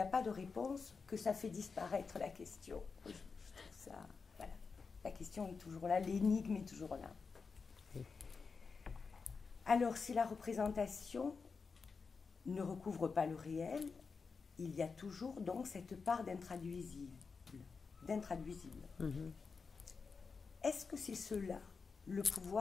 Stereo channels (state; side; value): quieter; right; 5.0 dB